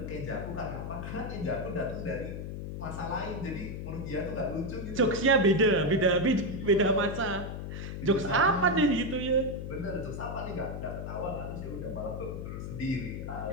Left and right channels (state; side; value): noise; left; hum, 6 dB below the sound